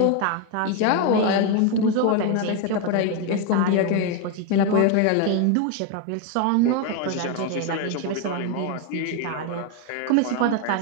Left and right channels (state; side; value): different; both; correlation 0.02